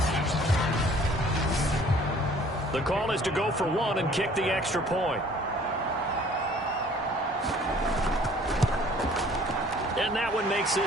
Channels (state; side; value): normal; both; correlation 0.54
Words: The call is to go for 1 and kick the extra point. And that one makes